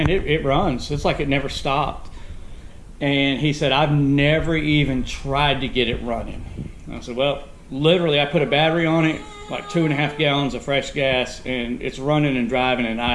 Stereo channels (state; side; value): identical; both; correlation 1.00